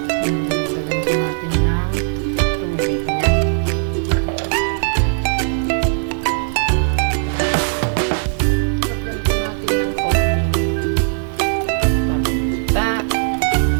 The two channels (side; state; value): left; silent; 64 dB below the other